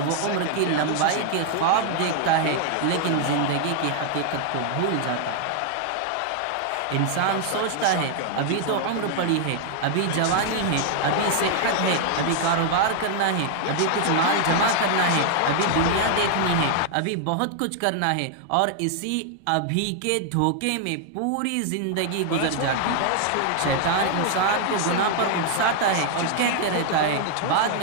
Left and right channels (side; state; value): both; different; correlation 0.00